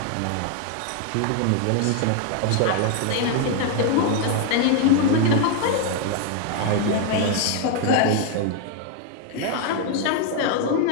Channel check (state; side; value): different; both; correlation 0.01